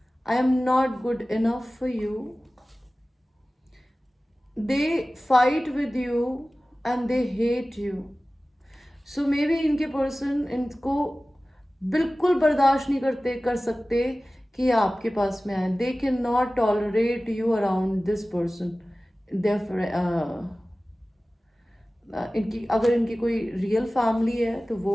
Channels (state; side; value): normal; both; correlation 0.97